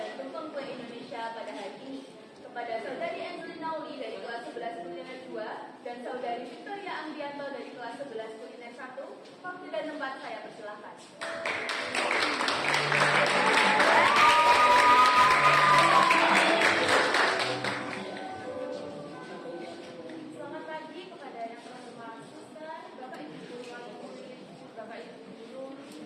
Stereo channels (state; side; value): identical; both; correlation 1.00